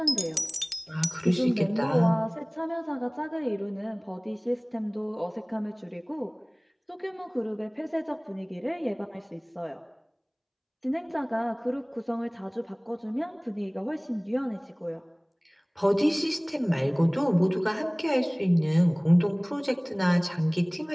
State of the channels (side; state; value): both; identical; correlation 1.00